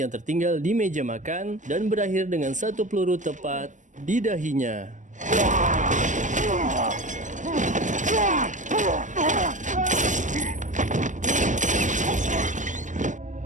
tertinggal di meja makan dan berakhir dengan satu peluru tepat di dahinya.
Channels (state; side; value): late; left; 0.36 ms